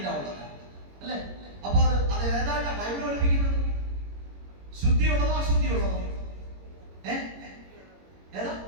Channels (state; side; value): late; left; 21 ms